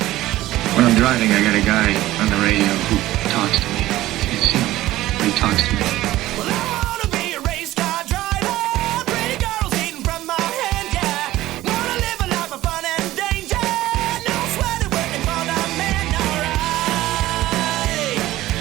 When I'm driving, I got a guy on the radio who talks to me. You see him, but he talks to me. Well, I wanna be a race car driver. Pretty girls eating from my hand, yeah. Wanna live a life of fun and danger. No sweating working for the man, alright.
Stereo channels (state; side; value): quieter; left; 15.9 dB